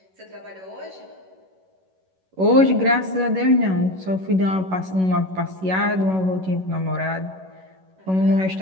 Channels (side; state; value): left; late; 11 ms